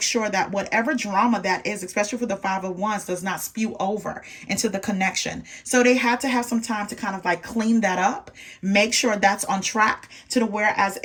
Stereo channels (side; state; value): both; identical; correlation 1.00